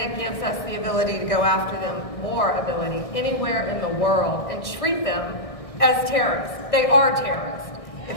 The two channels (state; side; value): late; right; 1.6 ms